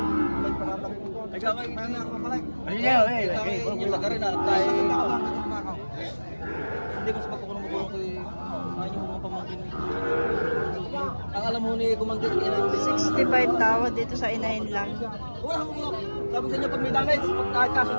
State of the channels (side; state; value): both; inverted; correlation -1.00